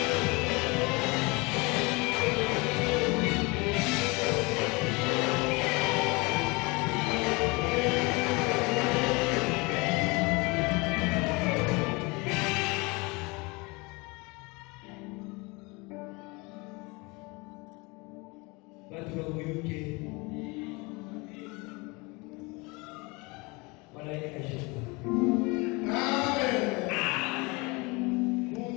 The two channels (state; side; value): quieter; right; 26.6 dB